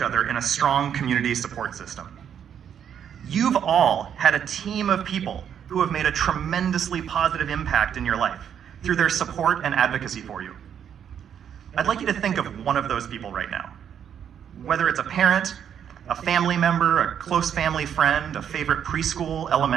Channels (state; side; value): quieter; left; 8.7 dB